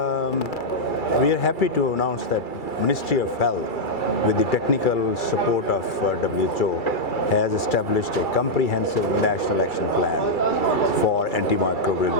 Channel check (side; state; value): right; late; 2.3 ms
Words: we are happy to announce that Ministry of Health, with the technical support of WHO, has established a comprehensive national action plan for antimicrobial